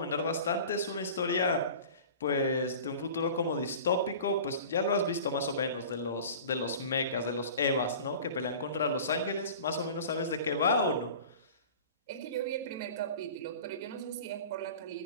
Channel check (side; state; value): both; inverted; correlation -0.39